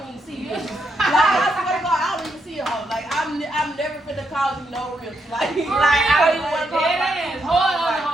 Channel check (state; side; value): normal; both; correlation 0.80